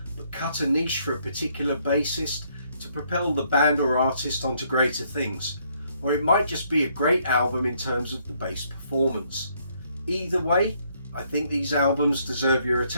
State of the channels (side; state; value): both; inverted; correlation -0.69